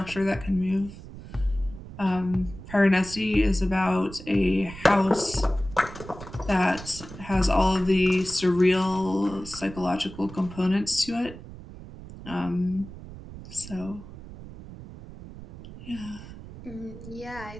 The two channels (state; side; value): noise; right; rumble, 14 dB below the sound